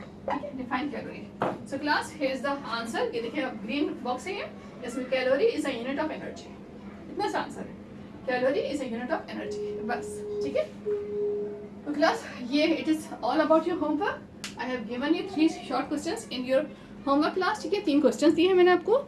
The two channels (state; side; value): identical; both; correlation 1.00